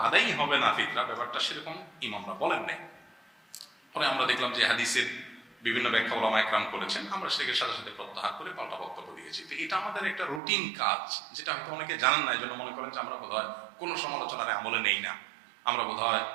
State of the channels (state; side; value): drops out; left; at 10.4 s